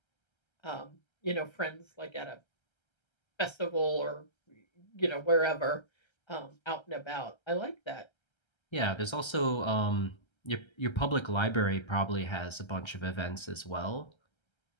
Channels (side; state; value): right; late; 1.3 ms